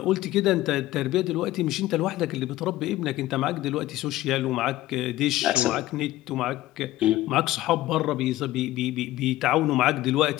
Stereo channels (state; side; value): quieter; right; 15.9 dB